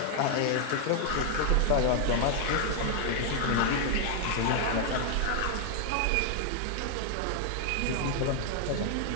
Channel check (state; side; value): different; both; correlation 0.00